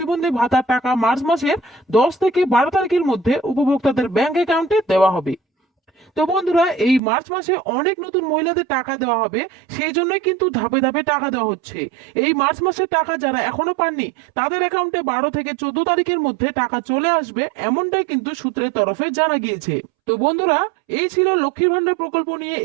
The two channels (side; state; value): left; drops out; at 7.0 s